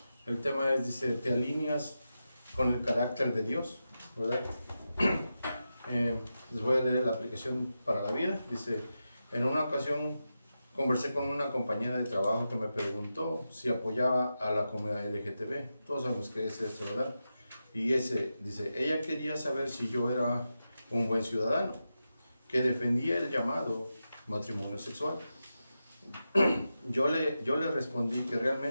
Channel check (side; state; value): both; inverted; correlation -0.90